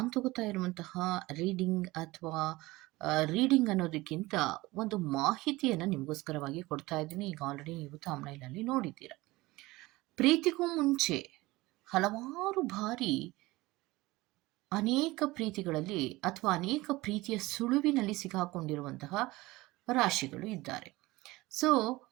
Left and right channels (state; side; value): quieter; left; 20.2 dB